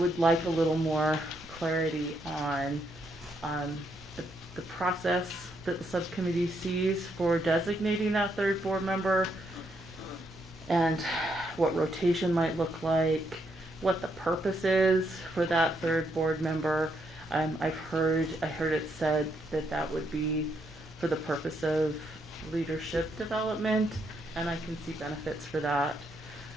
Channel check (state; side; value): normal; both; correlation 0.76